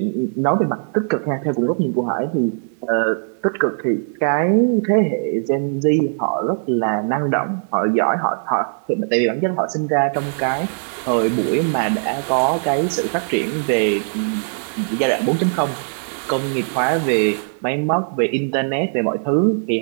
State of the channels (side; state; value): left; silent; digital silence